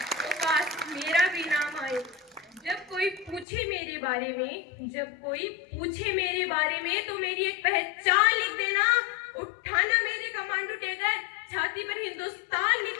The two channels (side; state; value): right; drops out; at 3.5 s